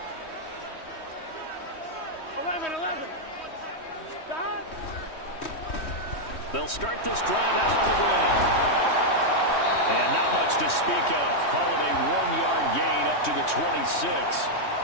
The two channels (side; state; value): right; late; 3.1 ms